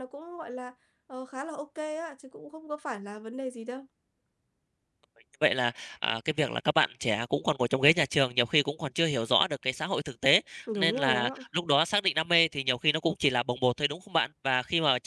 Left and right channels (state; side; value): identical; both; correlation 1.00